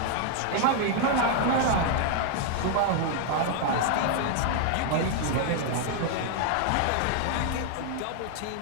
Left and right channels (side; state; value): both; different; correlation 0.00